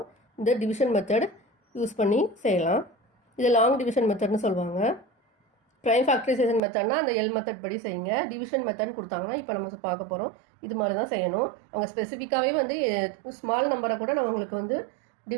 இந்த டிவிஷன் மெத்தட் யூஸ் பண்ணி செய்யலாம். இது லாங் டிவிஷன் மெத்தட்னு சொல்லுவாங்க. ப்ரைம் ஃபேக்டரைசேஷன் மெத்தட்னா அந்த எல் மெத்தட் படி செய்யுங்க. டிவிஷன் மெத்தட் கொடுத்தாங்கன்னா இப்போ நம்ம பார்க்க போகிறோம், இது மாதிரி தான் செய்யணும். அவங்க ஸ்பெசிஃபிக்காகவே வந்து ஸ்மால் நம்பரை கூட நம்ம உங்களுக்கு வந்து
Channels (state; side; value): drops out; left; at 6.6 s